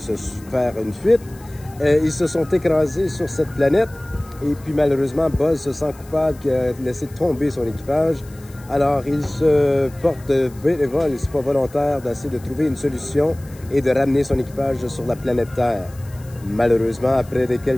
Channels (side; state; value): left; noise; hiss, 24 dB below the sound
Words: faire une fuite, ils se sont écrasés sur cette planète. Et puis malheureusement, Buzz se sent coupable qu'il a laissé tomber son équipage. Alors il se porte bénévole, c'est pas volontaire, d'essayer de trouver une solution et de ramener son équipage sur la planète Terre. Malheureusement, après